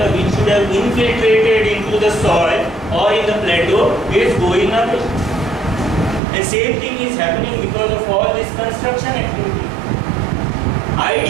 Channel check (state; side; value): drops out; left; at 6.2 s